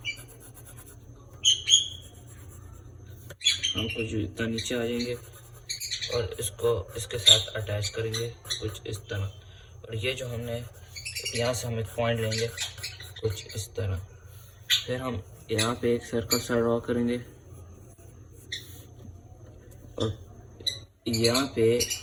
हम कुछ इतना नीचे आ जाएंगे और इसको इसके साथ अटैच करेंगे कुछ इस तरह। और ये जो हमने यहाँ से हम एक पॉइंट लेंगे कुछ इस तरह। फिर हम यहाँ पे एक सर्कल सा ड्रॉ करेंगे और यहाँ पे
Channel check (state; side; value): identical; both; correlation 1.00